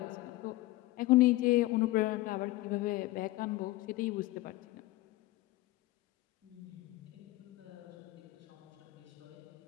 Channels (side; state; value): right; quieter; 18.8 dB